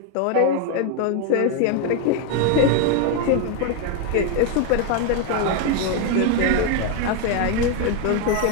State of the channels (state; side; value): different; both; correlation 0.01